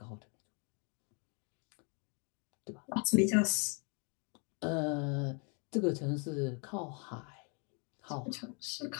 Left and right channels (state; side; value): quieter; right; 36.9 dB